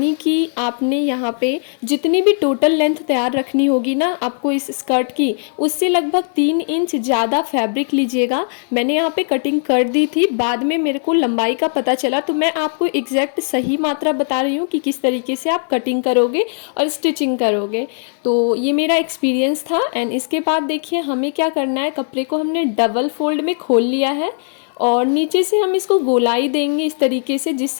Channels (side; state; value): right; silent; digital silence